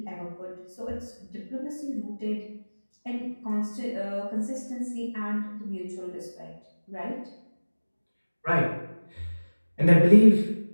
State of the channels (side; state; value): both; inverted; correlation -1.00